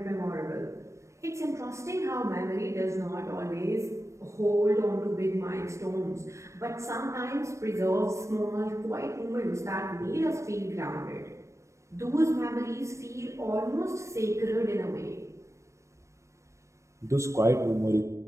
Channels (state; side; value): late; left; 0.14 ms